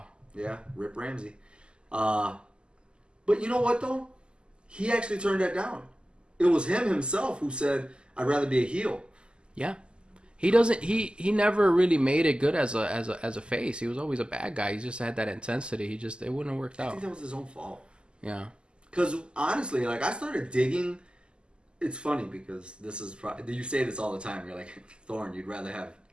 Yeah, Rip Ramsey. But you know what though? He actually turned that down. It was him himself who said, "I'd rather be a heel." Yeah. He doesn't. He never really made it good as a face. He was always a bad guy. He just had that intensity. It wouldn't have worked I out. think that was his own fault. Yeah. Because honestly, like I started digging. It's funny because this is you say this all the time. You're like, Thorn, you'd rather have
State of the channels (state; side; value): late; left; 0.049 ms